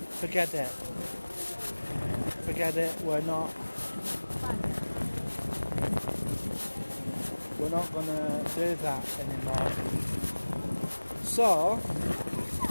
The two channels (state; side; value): inverted; both; correlation -1.00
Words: forget it, we're not going to do that anymore. So